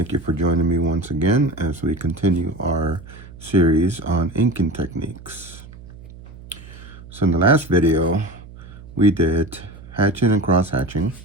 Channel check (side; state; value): right; noise; hum, 18 dB below the sound